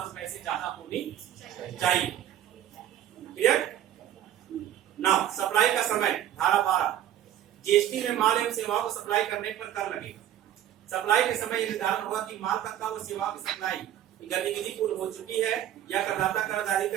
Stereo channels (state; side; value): quieter; left; 11.4 dB